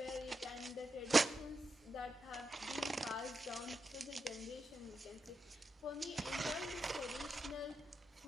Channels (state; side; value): normal; both; correlation 0.87